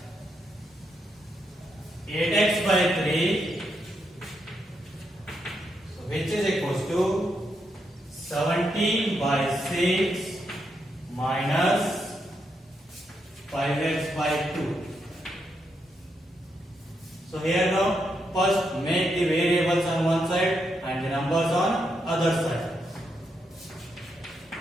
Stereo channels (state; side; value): normal; both; correlation 0.81